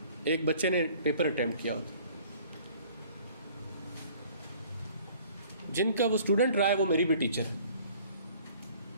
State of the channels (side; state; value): both; inverted; correlation -0.53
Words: ایک بچے نے پیپر اٹیمپٹ کیا ہوتا, جن کا وہ اسٹوڈنٹ رہا ہے وہ میری بھی ٹیچر